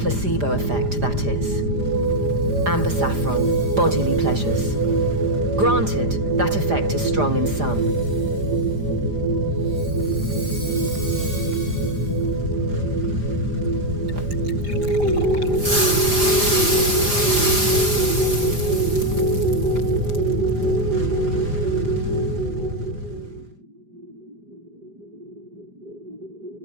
effect, that is. Amber saffron, bodily pleasures. Granted, that effect is strong in some.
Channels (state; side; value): late; left; 4.9 ms